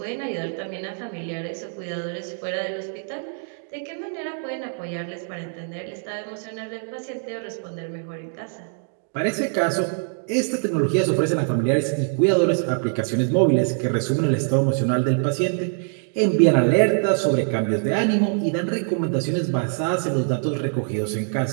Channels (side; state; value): left; silent; 63 dB below the other